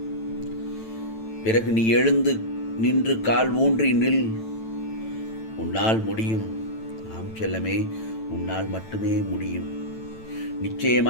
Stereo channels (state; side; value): late; right; 9.0 ms